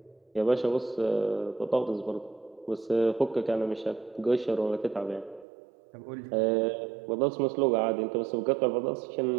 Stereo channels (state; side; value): drops out; left; at 5.5 s